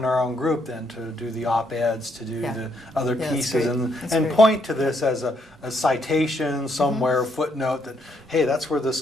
our own group, then to do the op-eds, to do the other pieces, and point to this as a citation somewhere, footnote that, hey, that's where this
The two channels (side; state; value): both; normal; correlation 0.74